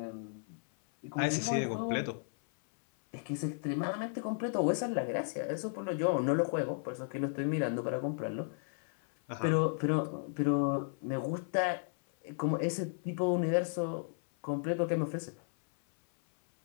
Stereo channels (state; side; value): silent; right; 55 dB below the other